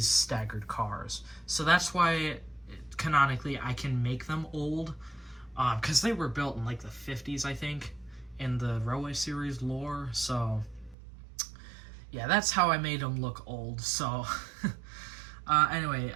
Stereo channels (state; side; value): drops out; left; at 11.0 s